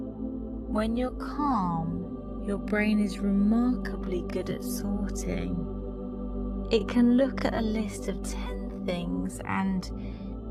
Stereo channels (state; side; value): identical; both; correlation 1.00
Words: When you're calm, your brain is remarkably good at sorting. It can look at a list of 10 things and